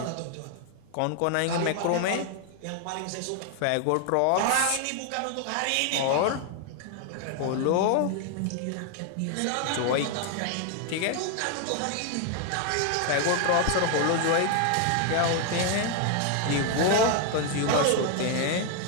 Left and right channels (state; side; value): different; both; correlation 0.00